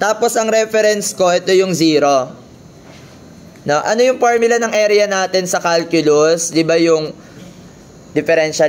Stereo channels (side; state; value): both; identical; correlation 1.00